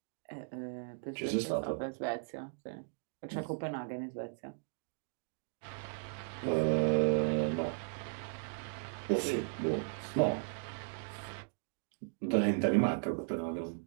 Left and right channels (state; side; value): silent; left; digital silence